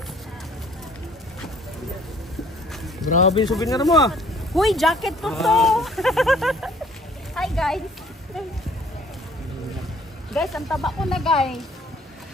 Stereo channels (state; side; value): normal; both; correlation 0.58